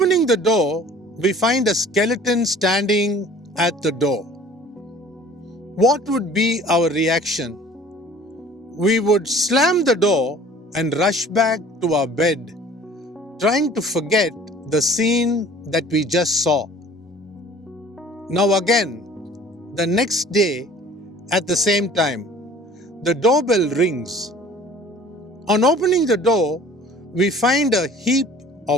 the door, we find a skeleton standing at the door. What would be our reaction? We would slam the door and rush back to our bed, trying to forget the scene that we just saw. Now again, the next day, at the same time, the doorbell rings. On opening the door, we find a heap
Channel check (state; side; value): normal; both; correlation 0.49